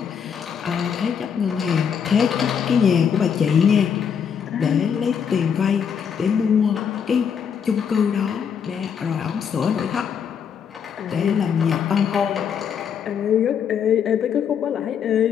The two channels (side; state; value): right; quieter; 7.4 dB